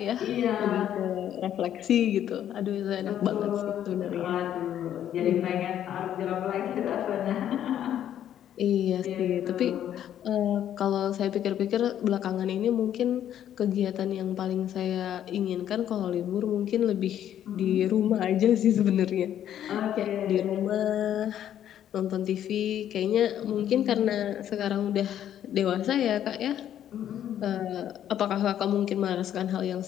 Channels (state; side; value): quieter; right; 10.7 dB